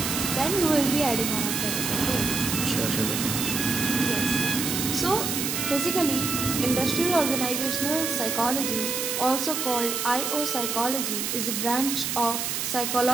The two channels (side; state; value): right; noise; hiss, 1 dB below the sound